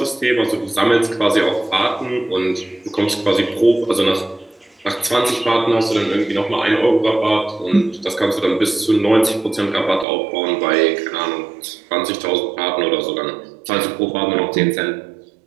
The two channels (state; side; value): drops out; left; at 10.1 s